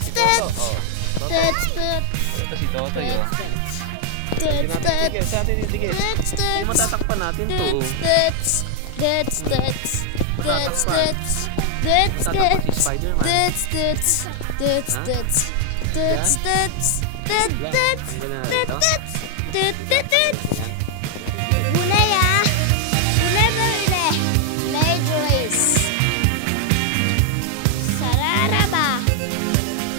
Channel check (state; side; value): different; both; correlation 0.00